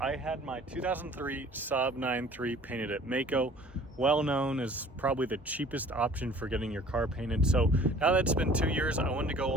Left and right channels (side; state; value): both; normal; correlation 0.50